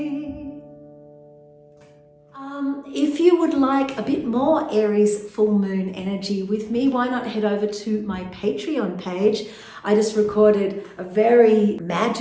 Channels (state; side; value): identical; both; correlation 1.00